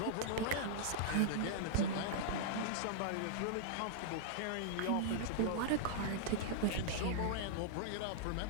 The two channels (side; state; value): both; different; correlation -0.01